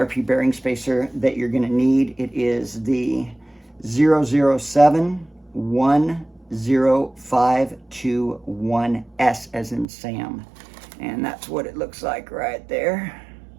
bearing spacer that you're going to need. It is the 00710521S as in Sam. And that's what it looks like right there.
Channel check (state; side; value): drops out; left; at 9.9 s